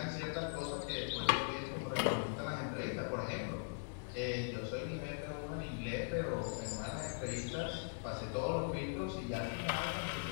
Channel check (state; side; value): silent; right; digital silence